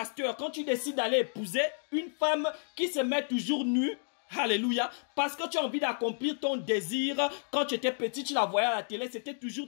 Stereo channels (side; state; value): right; silent; digital silence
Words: quand tu décides d'aller épouser une femme qui se met toujours nue, alléluia, parce que tu as envie d'accomplir ton désir, quand tu étais petit, tu la voyais à la télé, c'était